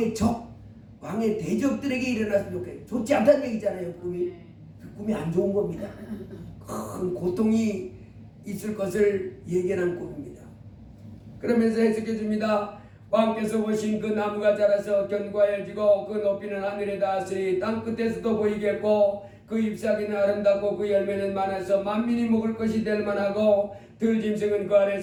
적, 왕의 대적들에게 일어났으면 좋겠어요. 좋지 않다는 얘기잖아요. 꿈이. 그 꿈이 안 좋은 겁니다. 큰 고통이 있을 것을 예견한 꿈입니다. 그러면서 해석해 줍니다. 왕께서 보신 그 나무가 자라서 견고해지고 그 높이는 하늘에 닿았으니 땅 끝에서도 보이겠고 그 잎사귀는 아름답고 그 열매는 많아서 만민이 먹을 것이 될 만하고 들짐승은 그 아래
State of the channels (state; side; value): identical; both; correlation 1.00